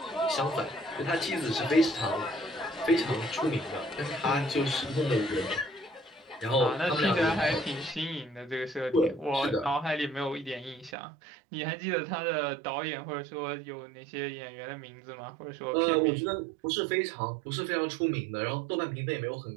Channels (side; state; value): left; drops out; at 11.0 s